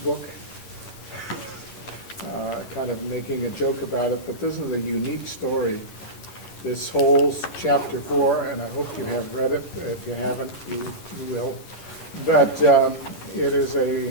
book. Kind of making a joke about it, but this is a unique story. This whole chapter 4, and I hope you have read it. If you haven't, you will. But it is a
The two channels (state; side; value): late; right; 11 ms